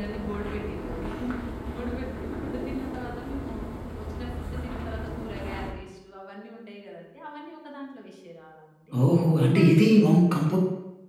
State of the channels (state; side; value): identical; both; correlation 1.00